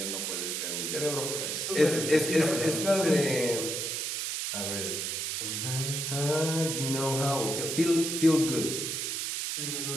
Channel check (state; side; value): noise; right; hiss, 2 dB below the sound